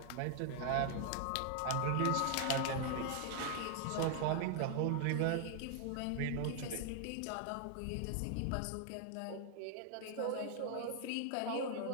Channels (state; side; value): different; both; correlation 0.00